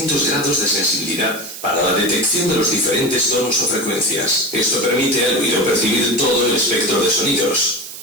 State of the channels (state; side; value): noise; right; hiss, 12 dB below the sound